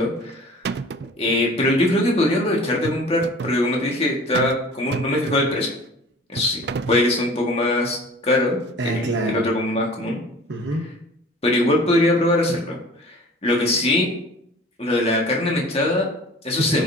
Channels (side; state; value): both; normal; correlation 0.44